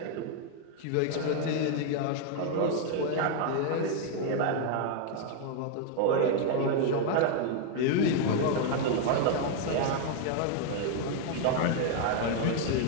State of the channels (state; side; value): different; both; correlation 0.00